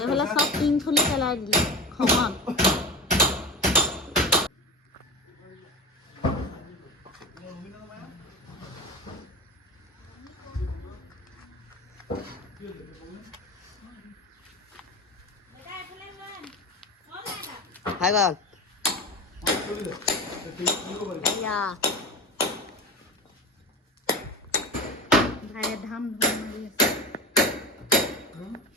এইফালে চব টিং খুলি পেলাই দিলে খঙত।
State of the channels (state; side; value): normal; both; correlation 0.27